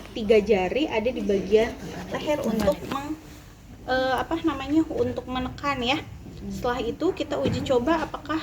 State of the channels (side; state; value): both; identical; correlation 1.00